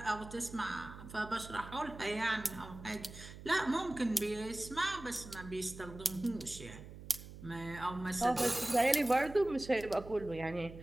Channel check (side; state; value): right; noise; hum, 14 dB below the sound